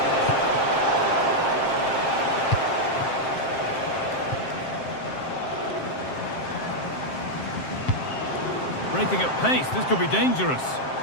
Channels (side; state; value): right; late; 7.5 ms